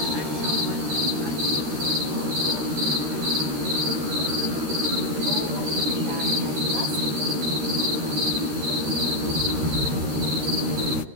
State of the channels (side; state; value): left; late; 13 ms